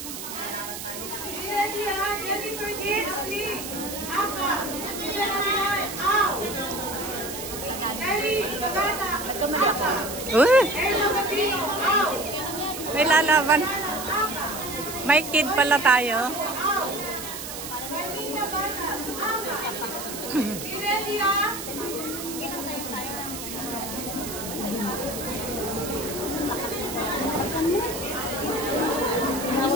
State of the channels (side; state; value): right; noise; hiss, 8 dB below the sound